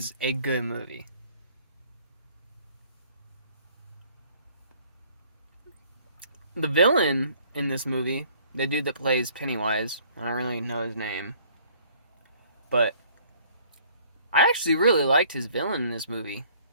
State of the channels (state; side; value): inverted; both; correlation -0.58